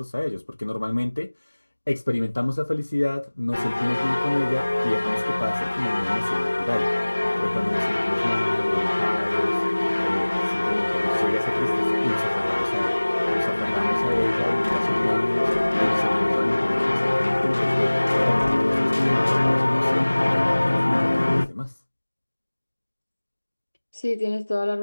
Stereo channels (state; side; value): inverted; both; correlation -1.00